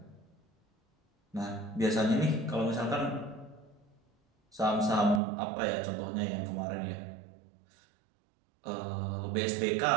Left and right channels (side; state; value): left; drops out; at 5.2 s